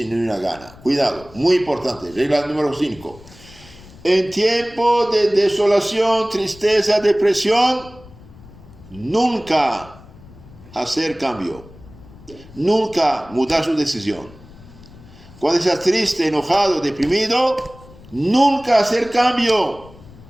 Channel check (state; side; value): noise; left; rumble, 21 dB below the sound